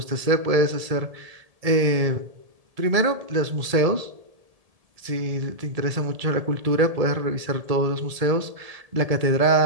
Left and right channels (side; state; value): left; late; 1.7 ms